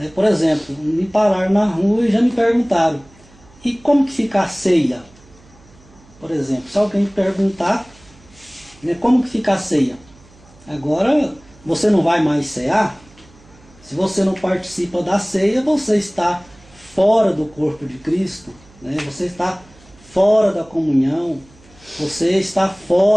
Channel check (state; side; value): noise; right; hum, 26 dB below the sound